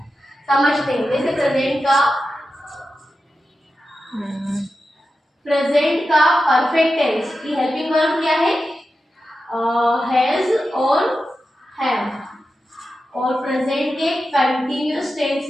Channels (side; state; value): both; normal; correlation 0.91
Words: समझते हैं, जैसे प्रेजेंट का परफेक्ट टेंस की हेल्पिंग वर्ब क्या है, हैज और हैव। और प्रेजेंट के कंटिन्यूअस टेंस